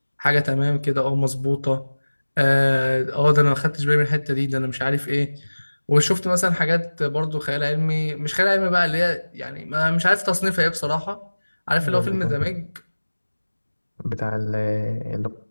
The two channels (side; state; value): both; inverted; correlation -1.00